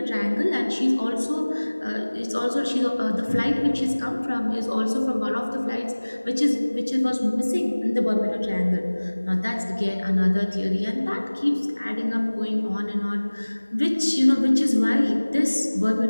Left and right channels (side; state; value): both; inverted; correlation -1.00